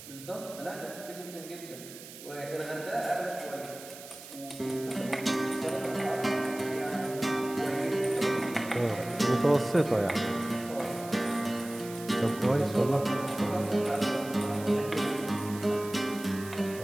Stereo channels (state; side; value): noise; right; hiss, 15 dB below the sound